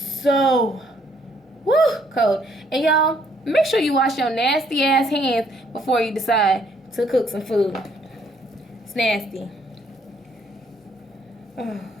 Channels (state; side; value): normal; both; correlation 0.67